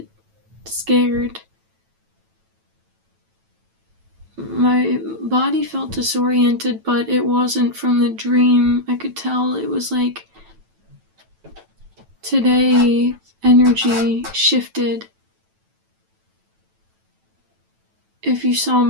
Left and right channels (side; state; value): left; late; 9.1 ms